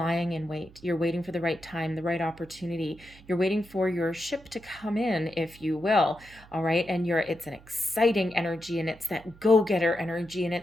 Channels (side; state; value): right; noise; hum, 23 dB below the sound